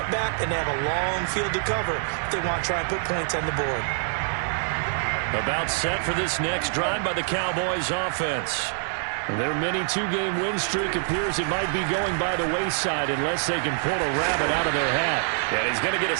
and they have a long field to cover if they want to try and put points on the board. About set for this next drive by the Cowboys offense. Their mini 2-game win streak appears it might be going by the wayside unless they can pull a rabbit out of their hat. And he's going to get a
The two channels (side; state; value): left; silent; 61 dB below the other